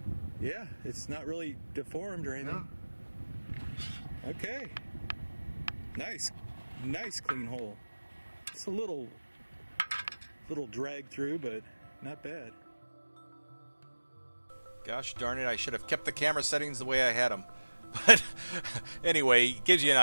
Yeah, it's not really deformed or anything. No. Okay. Nice clean hole. It's a little drag through, but not bad. Gosh darn it, I should have kept the camera settings the way I had them. But anyway, it gives you an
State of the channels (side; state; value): both; inverted; correlation -1.00